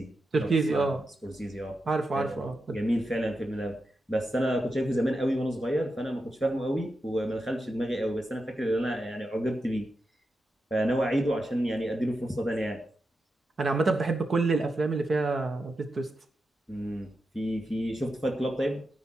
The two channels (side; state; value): both; normal; correlation 0.88